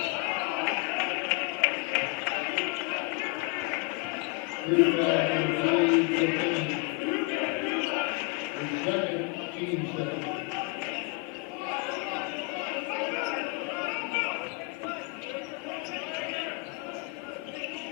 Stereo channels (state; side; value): quieter; right; 28.8 dB